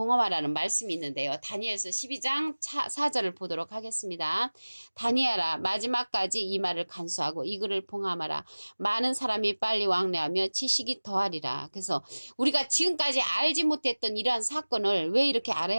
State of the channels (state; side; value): inverted; both; correlation -1.00